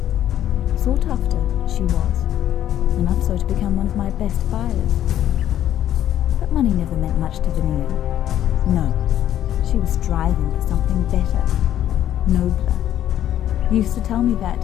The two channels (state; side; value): quieter; right; 11.5 dB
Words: Sought after, she was, enough so to become one of my best buyers. But money never meant much to Veneer. No, she was striving for something better, nobler. Used to tell me